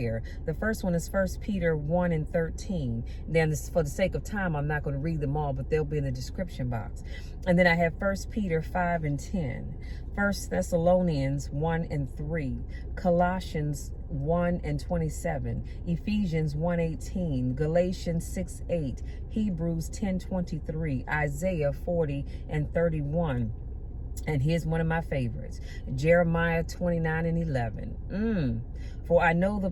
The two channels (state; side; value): identical; both; correlation 1.00